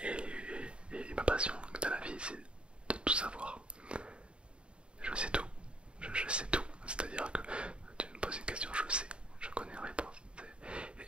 Et ma passion dans la vie, c'est de tout savoir. Je sais tout. Je sais tout. C'est-à-dire que tu me poses une question, je sais. Je connais la réponse. Et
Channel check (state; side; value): late; left; 0.055 ms